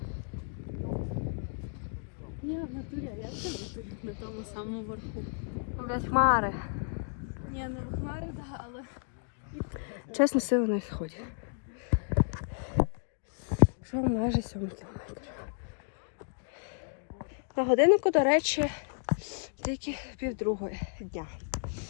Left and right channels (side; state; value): right; silent; 56 dB below the other